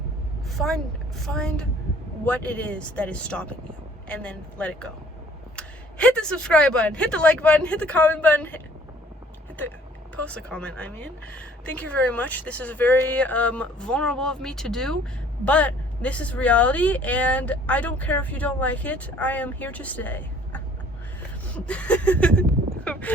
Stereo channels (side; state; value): both; normal; correlation 0.56